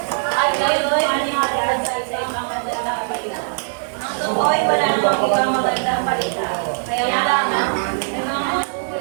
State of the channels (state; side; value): silent; left; digital silence